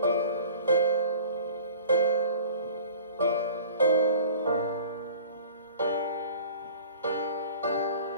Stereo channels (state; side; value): inverted; both; correlation -0.45